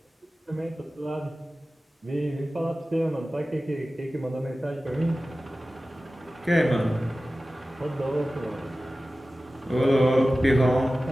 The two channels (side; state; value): both; normal; correlation 0.96